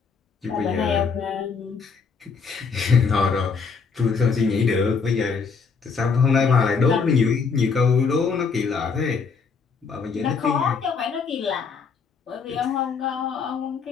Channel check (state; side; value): quieter; right; 5.4 dB